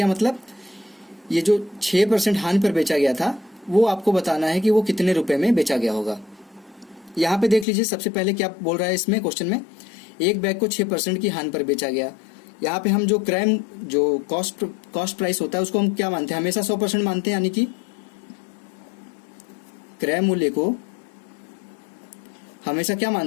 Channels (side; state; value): right; drops out; at 7.7 s